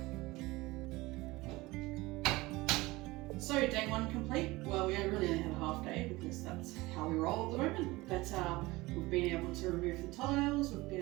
So day one complete. Well, we really only had a half day because that's how we roll at the moment. But we've been able to remove the tiles, we've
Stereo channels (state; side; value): quieter; left; 20.8 dB